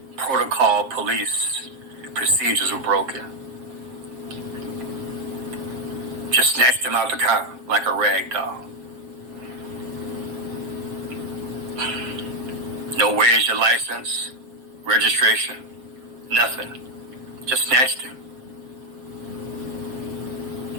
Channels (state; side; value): late; left; 7.4 ms